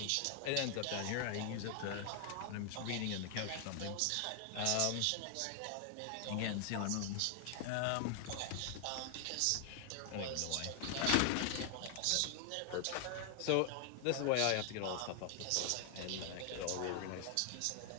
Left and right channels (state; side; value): different; both; correlation 0.00